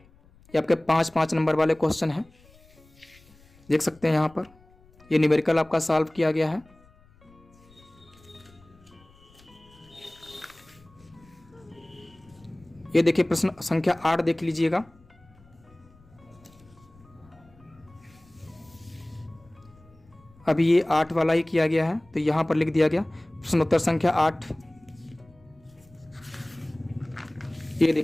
आपके 5-5 नंबर वाले क्वेश्चन हैं, देख सकते हैं यहाँ पर। ये न्यूमेरिकल आपका सॉल्व किया गया है। ये देखिए प्रश्न संख्या 8 देख लीजिएगा। अभी ये 8 वाला ही किया गया है, तो यहां पर लिख दिया गया प्रश्नोत्तर संख्या 8। ये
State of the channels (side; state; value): left; noise; rumble, 28 dB below the sound